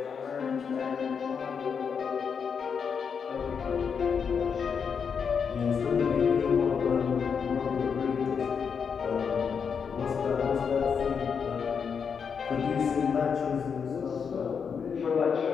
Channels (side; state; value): right; quieter; 6.4 dB